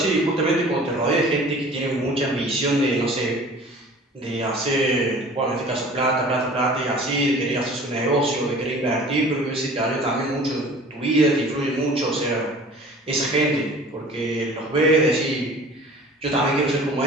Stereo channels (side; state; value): both; normal; correlation 0.45